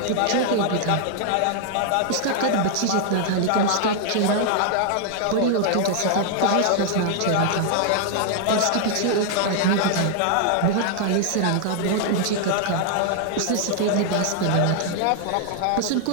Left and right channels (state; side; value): different; both; correlation 0.00